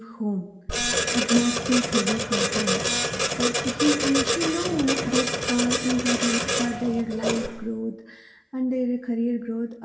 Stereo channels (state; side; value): identical; both; correlation 1.00